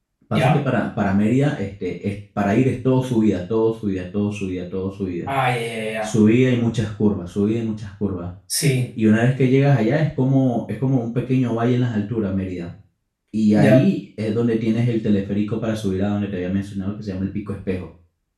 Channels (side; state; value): both; identical; correlation 1.00